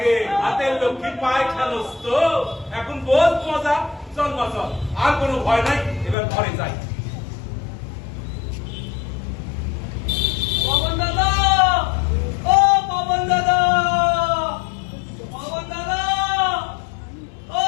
হাতের লক্ষ্মী পায় খেলোস তো এখন বহুত মজা চল মা চল আর কোনো ভয় নাই এবার ঘরে যাই পবন দাদা ও পবন দাদা ও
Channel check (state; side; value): drops out; right; at 6.2 s